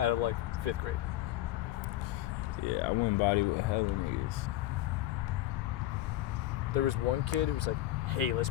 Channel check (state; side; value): quieter; right; 14.5 dB